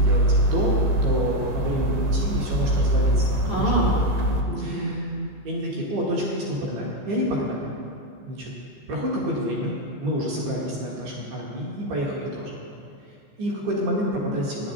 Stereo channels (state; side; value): late; left; 15 ms